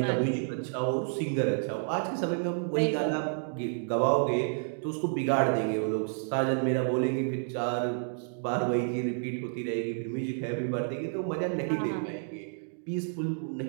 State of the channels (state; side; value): silent; left; digital silence